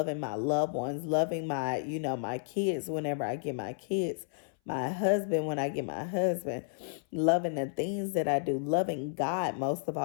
my loved ones, loving my kids whenever I get my kids. my husband when I get my husband, loving the things that I do, loving God most of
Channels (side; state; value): right; silent; 57 dB below the other